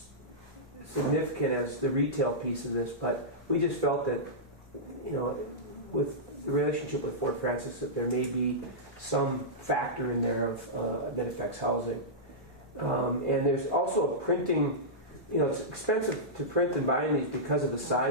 significant as the retail piece of this, but we just felt that, with the relationship with Fort Francis, that there may be some factor in there of that affects housing. And there's also a printing, it's expensive to print and bind these because of the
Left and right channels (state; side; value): normal; both; correlation -0.13